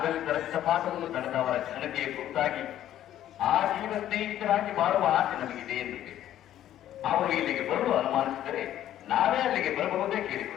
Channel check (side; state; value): right; quieter; 12.0 dB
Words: ರಕ್ತಪಾತವನ್ನು ತಡೆದವರ ಘನತೆಯ ಕುರಿತಾಗಿ ಆ ಜೀವ ಸ್ನೇಹಿತರಾಗಿ ಬಾಳುವ ಆಸೆ ನಮಗಿದೆ ಎನ್ನುತ್ತೇವೆ. ಅವರು ಇಲ್ಲಿಗೆ ಬರಲು ಅನುಮಾನಿಸಿದರೆ ನಾವೇ ಅಲ್ಲಿಗೆ ಬರಬಹುದೇ